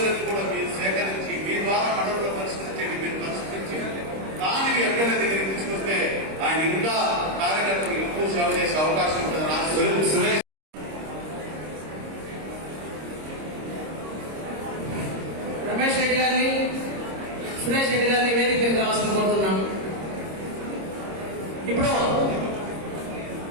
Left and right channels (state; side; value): late; left; 26 ms